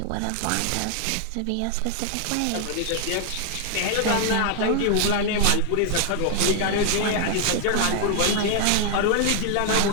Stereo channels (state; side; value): different; both; correlation 0.00